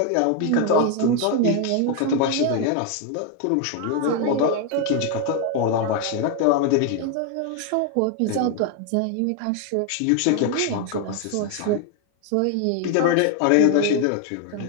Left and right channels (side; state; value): both; different; correlation 0.01